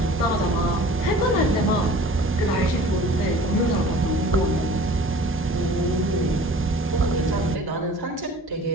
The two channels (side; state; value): both; normal; correlation 0.45